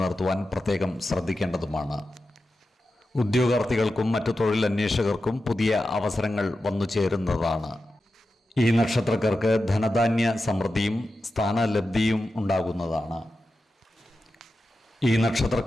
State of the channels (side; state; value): both; normal; correlation 0.91